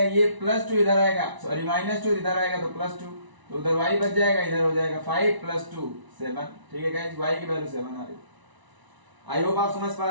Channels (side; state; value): left; late; 1.0 ms